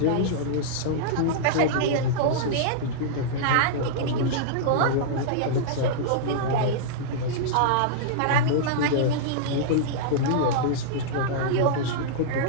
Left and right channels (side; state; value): both; different; correlation -0.02